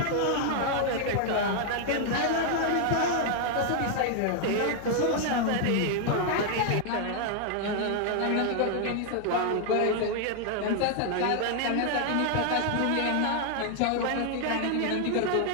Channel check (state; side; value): different; both; correlation 0.00